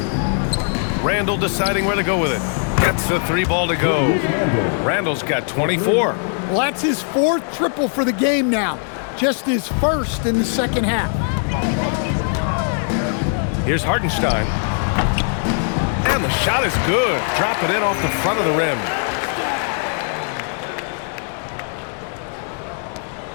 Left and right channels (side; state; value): right; silent; 55 dB below the other